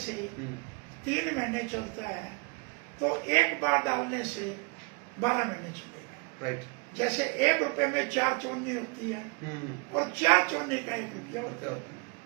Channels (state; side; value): quieter; left; 31.4 dB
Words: 3 महीने चलता है तो 1 बार डालने से 12 महीने चलेगा। राइट। जैसे 1 रुपए में 4 चौनी होती है और 4 चौनी का 1 रुपया होता है।